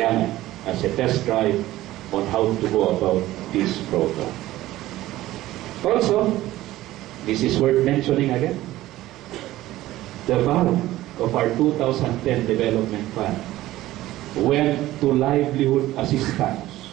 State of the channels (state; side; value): quieter; left; 15.8 dB